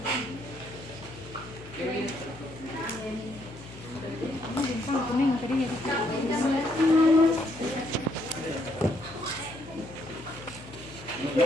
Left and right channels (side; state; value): left; noise; hum, 17 dB below the sound